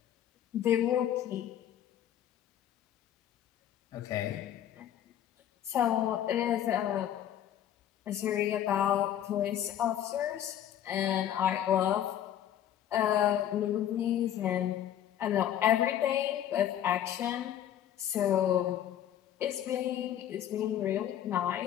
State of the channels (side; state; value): right; quieter; 10.8 dB